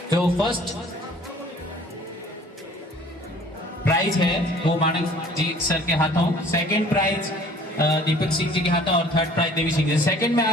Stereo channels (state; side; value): normal; both; correlation 0.52